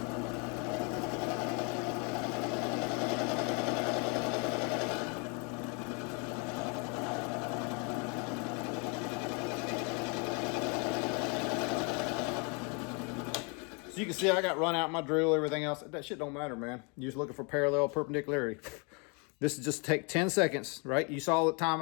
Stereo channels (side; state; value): right; quieter; 33.6 dB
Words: So you can see I got run out my drill, everything else. That shit don't matter, man. You're just looking for parallel perpendicularity. This is just take 10 seconds, right? You saw the time